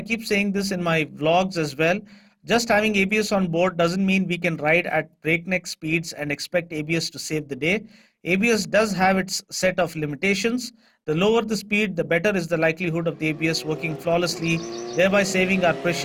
keep saying this in my vlogs as well. Just having ABS on board doesn't mean we can ride at breakneck speeds and expect ABS to save the day. ABS does have its set of limitations. The lower the speed, the better is the likelihood of the ABS working flawlessly, thereby saving our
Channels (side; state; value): both; identical; correlation 1.00